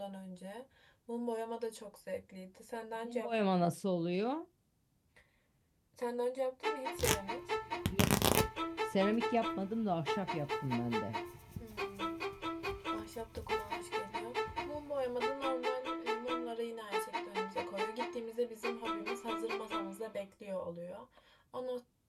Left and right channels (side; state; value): both; identical; correlation 1.00